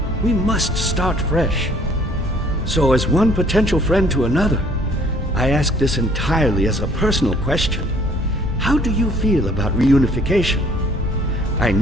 We must start fresh. So as one potential friend to another, I ask this entirely as a personal question. How do you feel about reunification? I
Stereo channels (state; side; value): normal; both; correlation 0.58